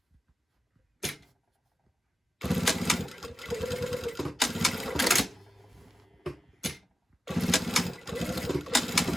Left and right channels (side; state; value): both; normal; correlation 0.93